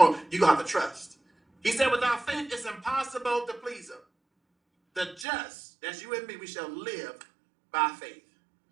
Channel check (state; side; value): drops out; left; at 5.2 s